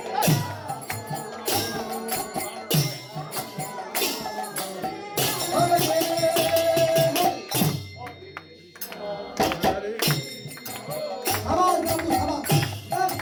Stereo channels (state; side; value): identical; both; correlation 1.00